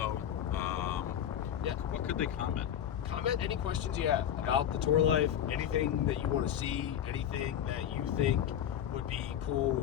Yeah. What could they comment? Comment any questions you have about the tour life, anything that you want to see, anything that you think would be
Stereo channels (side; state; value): right; quieter; 10.0 dB